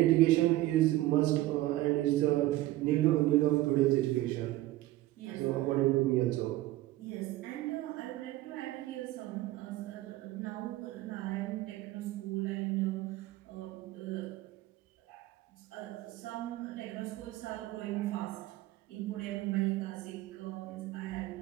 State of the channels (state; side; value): quieter; left; 16.5 dB